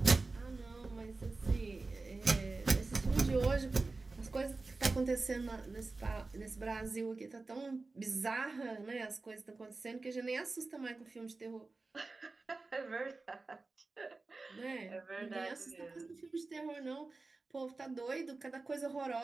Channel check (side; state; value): left; quieter; 3.6 dB